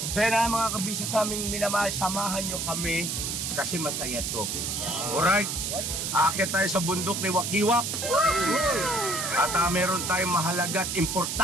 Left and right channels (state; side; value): noise; right; hiss, 2 dB below the sound